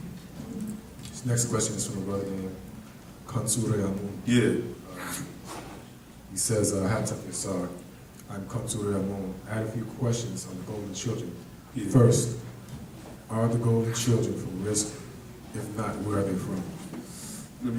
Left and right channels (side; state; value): both; identical; correlation 1.00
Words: this next question is from a brother named Kansure Amun. Yeah. He says, Hataf Yasar, I'm Kansure Amun. I had a few questions on the golden children. Yeah. First, are the golden children from risk? If not, where are they from? Let